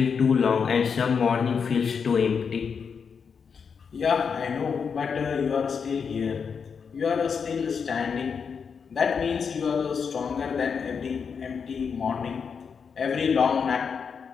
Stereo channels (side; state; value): right; quieter; 6.2 dB